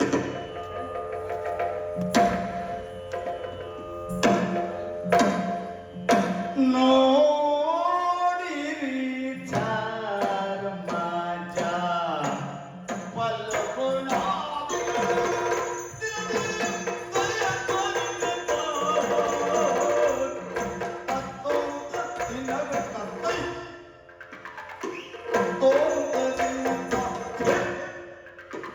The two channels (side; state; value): both; identical; correlation 1.00